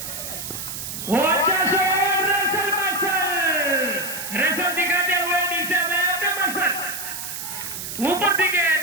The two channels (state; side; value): noise; right; hiss, 7 dB below the sound